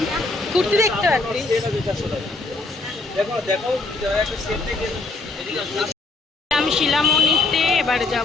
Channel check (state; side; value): quieter; right; 3.4 dB